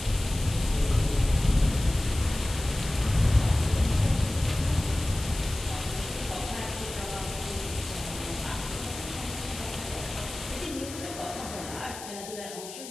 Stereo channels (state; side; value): noise; left; hiss, 12 dB below the sound